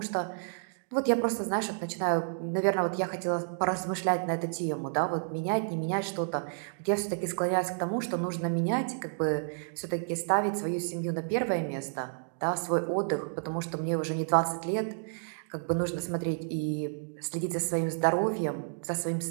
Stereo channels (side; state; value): left; silent; digital silence